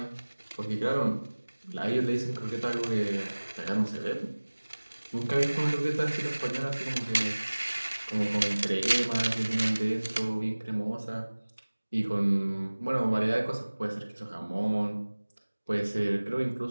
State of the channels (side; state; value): both; inverted; correlation -1.00